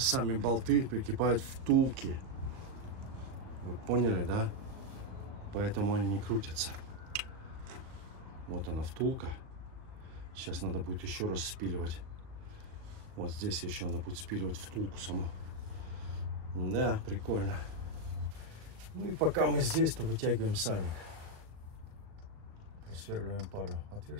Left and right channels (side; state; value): left; late; 37 ms